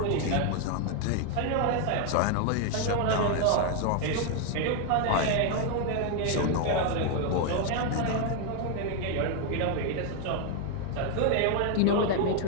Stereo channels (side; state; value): both; different; correlation 0.01